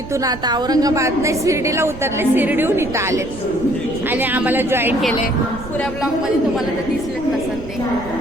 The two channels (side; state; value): right; noise; rumble, 13 dB below the sound